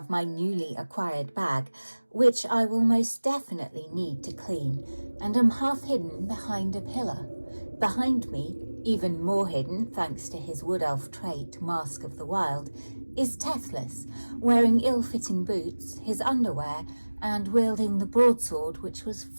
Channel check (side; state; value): both; inverted; correlation -1.00